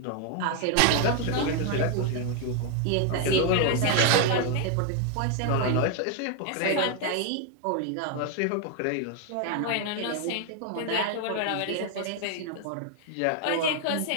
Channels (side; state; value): both; different; correlation 0.00